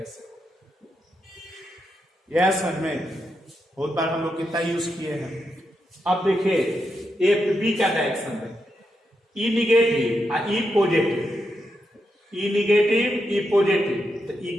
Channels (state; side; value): normal; both; correlation 0.84